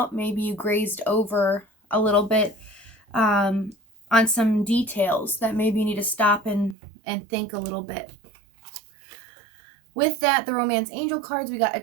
Maybe you grazed over a little bit on some details that maybe you need to stop and think a little bit. With that, the romance angel cards, we got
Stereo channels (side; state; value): left; drops out; at 6.8 s